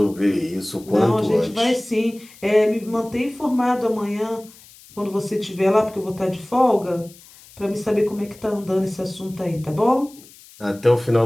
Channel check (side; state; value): left; noise; hiss, 23 dB below the sound